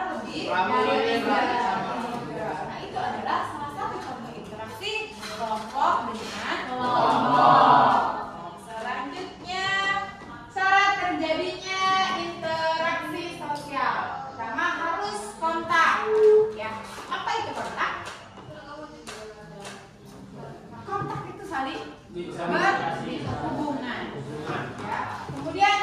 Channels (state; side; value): identical; both; correlation 1.00